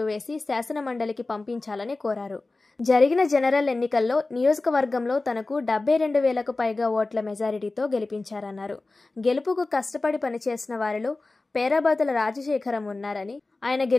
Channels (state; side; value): quieter; right; 3.3 dB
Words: వేసి శాసనమండలికి పంపించాలని కోరారు. జరిగిన జనరల్ ఎన్నికల్లో నియోజకవర్గంలో తనకు 72,000కు పైగా ఓట్ల మెజారిటీతో గెలిపించారన్నారు. గెలుపుకు కష్టపడి పనిచేసిన వారిలో పేరాబత్తుల రాజశేఖరం ఉన్నారని, ఆయన